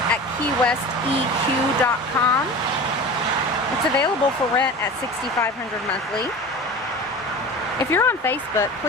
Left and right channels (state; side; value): normal; both; correlation 0.34